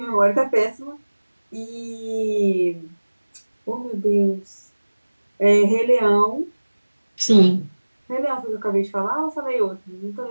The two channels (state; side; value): inverted; both; correlation -1.00